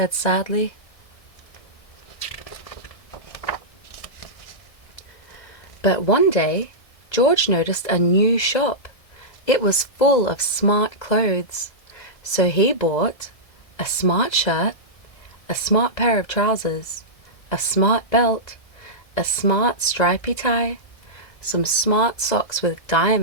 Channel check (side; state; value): right; late; 1.6 ms